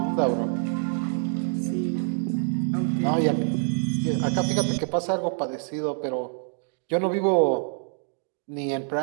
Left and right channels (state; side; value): silent; left; 59 dB below the other